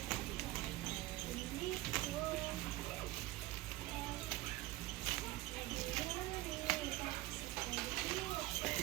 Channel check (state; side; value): quieter; left; 17.9 dB